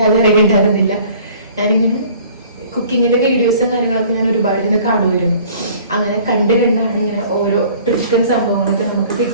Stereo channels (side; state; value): both; inverted; correlation -0.51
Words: അറിയേണ്ടായിരുന്നില്ല. ഞാനിങ്ങനെ കുക്കിങ്ങിന്റെ വീഡിയോസും കാര്യങ്ങളൊക്കെ ഞാൻ ഒരുപാട് ഇങ്ങനെ കാണുമായിരുന്നു. അങ്ങനെ കണ്ടാണ് ഇങ്ങനെ ഓരോ ട്രിക്കും സംഭവങ്ങളൊക്കെ നമുക്ക്